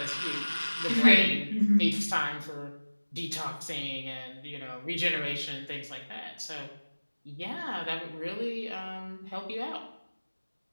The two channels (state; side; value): inverted; both; correlation -1.00